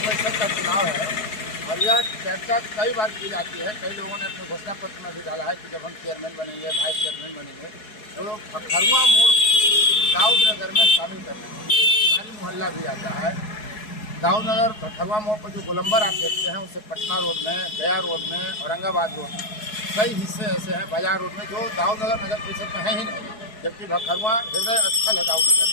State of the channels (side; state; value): right; late; 4.7 ms